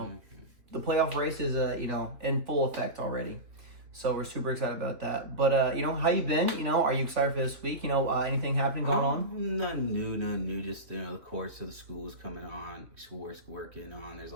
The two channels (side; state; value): left; late; 3.0 ms